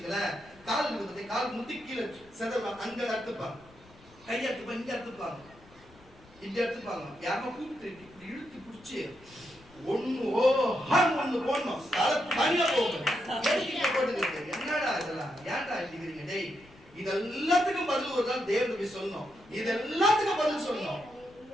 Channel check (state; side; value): noise; left; rumble, 25 dB below the sound